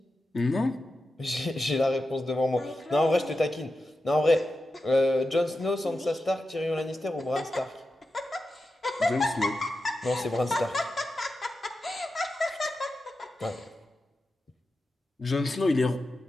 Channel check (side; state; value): both; normal; correlation 0.91